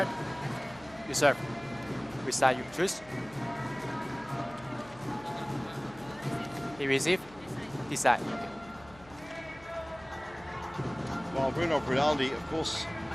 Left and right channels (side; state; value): left; noise; hum, 22 dB below the sound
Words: you serve. Which side you choose? He receive. This side. Okay. Well, Bruno Brinaldi, of course,